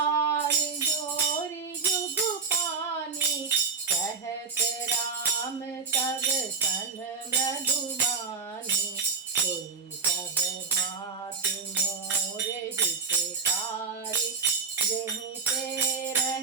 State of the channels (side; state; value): left; quieter; 5.2 dB